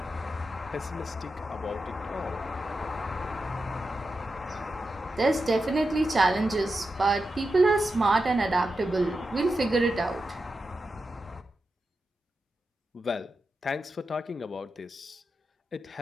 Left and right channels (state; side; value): normal; both; correlation 0.89